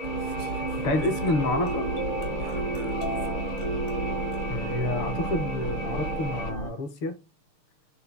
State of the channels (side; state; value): right; late; 6.6 ms